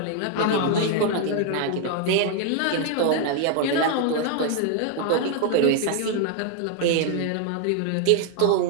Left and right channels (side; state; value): both; different; correlation 0.00